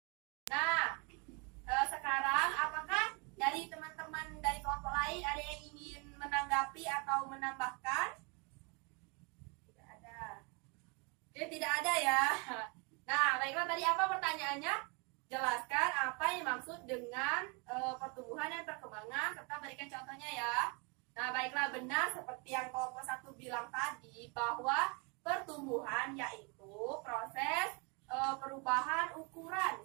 menanggapi atau menambahkan? Tidak ada. Oke, tidak ada ya. Nah, baiklah, tadi apa pertanyaannya? Jelaskan apa yang dimaksud dengan pertumbuhan dan perkembangan serta berikan contohnya ya. Nah, baiklah, benar seperti yang kelompok 1 bilang tadi bahwa pertumbuhan yaitu proses perubahan ukuran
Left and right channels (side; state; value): left; quieter; 32.1 dB